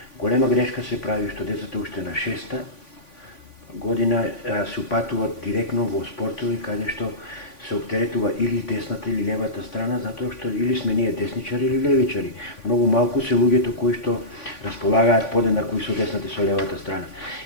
Голема грешка се прави што децата уште на 6-та година се упатуваат директно во спортови каде што се оптеретува или десната или левата страна, затоа што или сме ние десничари или левичари. Многу малку се луѓето кои што располагаат подеднакво и со десната и со левата страна.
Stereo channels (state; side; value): late; right; 3.5 ms